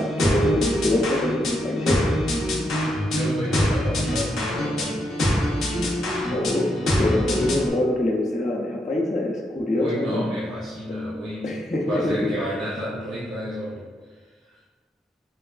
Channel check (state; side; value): normal; both; correlation 0.80